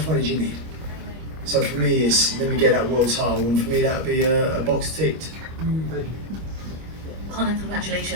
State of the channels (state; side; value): late; left; 25 ms